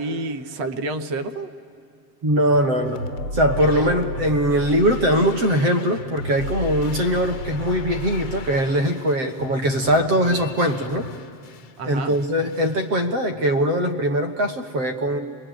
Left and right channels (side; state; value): left; late; 7.7 ms